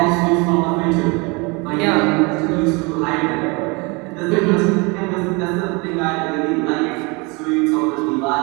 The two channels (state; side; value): quieter; left; 28.4 dB